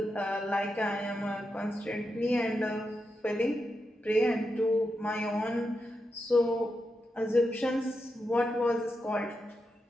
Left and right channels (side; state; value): both; normal; correlation 0.87